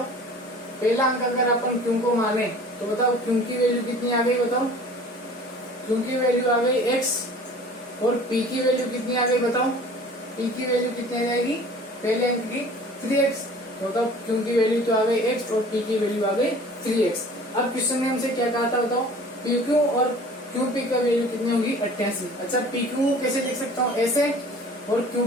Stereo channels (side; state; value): both; normal; correlation 0.46